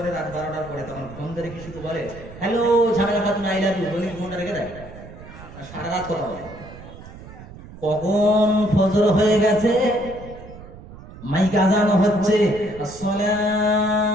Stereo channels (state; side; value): noise; right; rumble, 16 dB below the sound